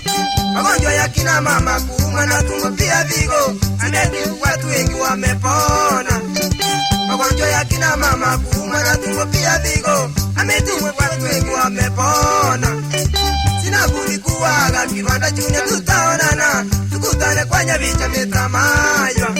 Magonjwa ya kina mama, kuumwa na tumbo, pia vigo, ameti watu wengi wamepona. Magonjwa ya kina mama, kuumwa na tumbo, pia vigo, ameti watu wengi wamepona. Sina budi kuaga Kiwanda Junior, tutaonana tukutane kwa Nyabicha Metamaywa.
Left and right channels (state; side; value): identical; both; correlation 1.00